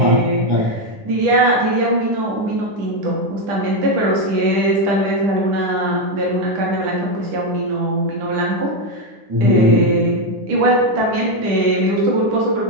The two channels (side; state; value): left; late; 10 ms